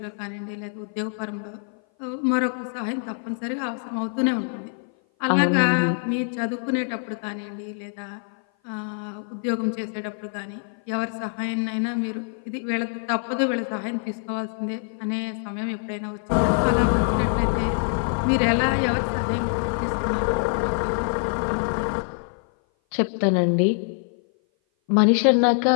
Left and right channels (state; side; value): silent; right; 56 dB below the other